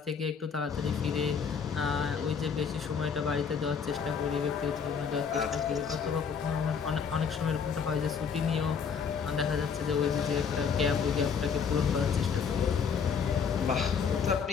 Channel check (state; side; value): quieter; right; 6.3 dB